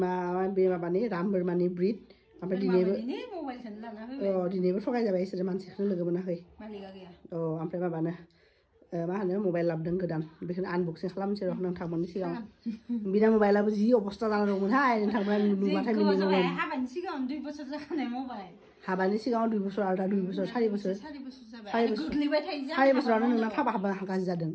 बे माबानि राम बोरमानि ब्रिड ओमफ्राय दिनैबो थगाय जाबाय बिसोरो मानसिखौनो लोगो मोनाखै ओमफ्राय माबानो मा होनो मबाइल लाबोदों गोदान बेखौनो आनबक्सिं खालामनोसै र' नोंथांमोननि सिगाङाव बिना मबाइलाबो जि अबस्था जाना दंमोनहाय नोंथांमोना नुबाथाय मिनिगौमोन हाबानि सिगाङाव 2 बोसोर आरो दा 2 बोसोर 4 बोसोर 4 बोसोरावनो नोंना फाबा गाज्रि जादों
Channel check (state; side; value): identical; both; correlation 1.00